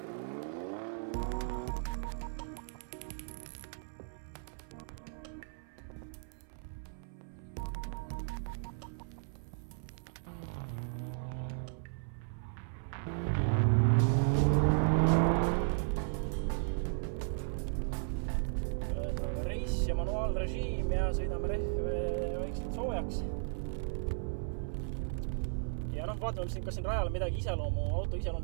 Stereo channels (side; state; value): left; silent; 54 dB below the other